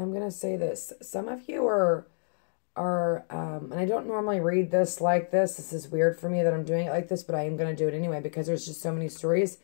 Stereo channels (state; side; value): silent; right; digital silence